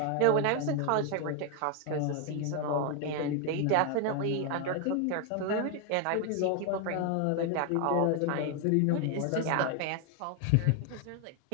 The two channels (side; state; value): both; different; correlation 0.01